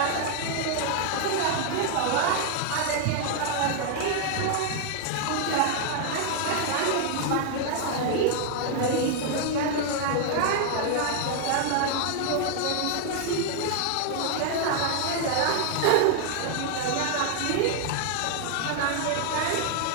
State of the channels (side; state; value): both; different; correlation 0.00